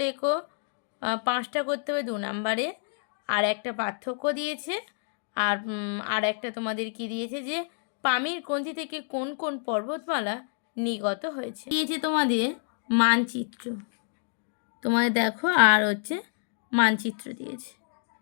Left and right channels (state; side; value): silent; right; digital silence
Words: লেখো, 5টা করতে হবে 2 নম্বরে। আর একটা পার্থক্য দিয়েছে। আর একটা তোমাদের কি দিয়েছে যে পামির গ্রন্থি থেকে কোন কোন পর্বতমালা নির্গত হয়েছে। দিয়েছে তোমাদের মানচিত্র, তোমাদের দেখো, আর হচ্ছে মানচিত্র দিয়েছে।